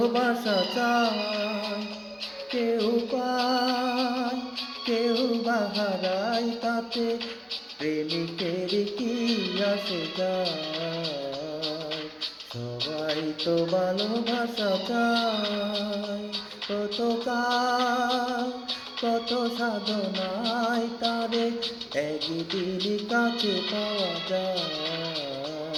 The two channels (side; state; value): both; identical; correlation 1.00